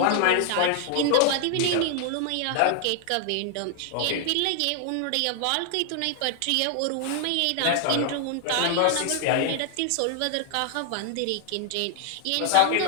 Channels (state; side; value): different; both; correlation 0.00